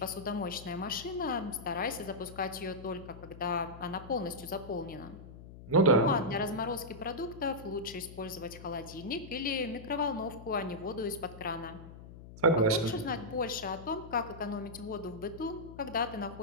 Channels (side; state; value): left; noise; hum, 15 dB below the sound